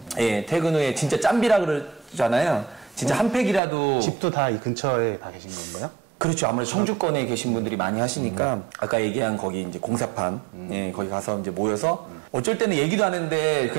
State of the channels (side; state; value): left; drops out; at 3.6 s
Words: 퇴근 후에 진짜 짬비라 그러잖아요. 진짜 한 팩이라도. 집도 다 이 근처에 다 계신 건가요? 그렇죠. 아무래도 청주권에 계신 분들이 많이 하시니까 아까 얘기한 거기 이제 공사판 거기 가서 이제 모여서 어쩔 때는 얘기도 안 했는데